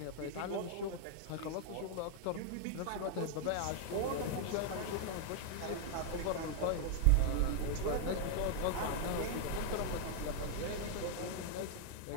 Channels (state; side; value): different; both; correlation 0.00